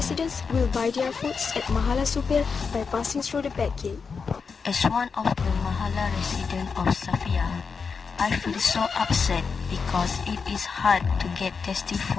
will buy their foods at Mahala Supir by passing through the back gate. As one of the Mahala residents of Safia, I feel so upset because it is hard to get tasty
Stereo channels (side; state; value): right; quieter; 5.4 dB